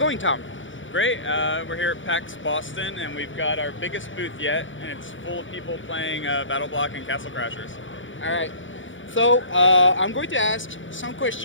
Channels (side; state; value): right; late; 0.56 ms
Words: Tom? Great. We're here at PAX Boston, and we've got our biggest booth yet, and it's full of people playing Battle Block and Castle Crashers. All right. So I'm going to ask some